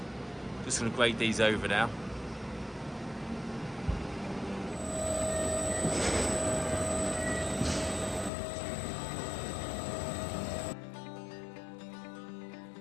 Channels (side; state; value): right; drops out; at 8.3 s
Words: Just going to grade these over now.